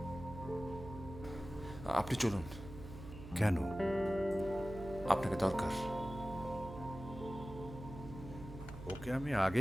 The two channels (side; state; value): right; noise; hum, 12 dB below the sound